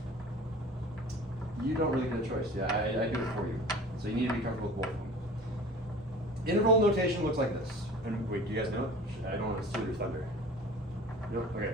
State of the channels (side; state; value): both; normal; correlation 0.43